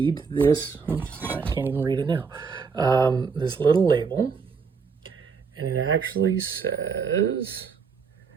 this, I can't even read it now, this little label, and it actually says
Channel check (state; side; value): quieter; left; 5.5 dB